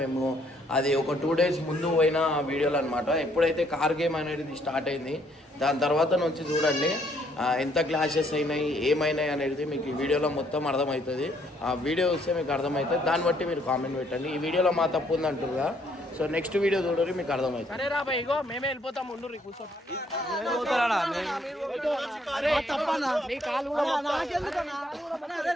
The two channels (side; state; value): both; normal; correlation 0.67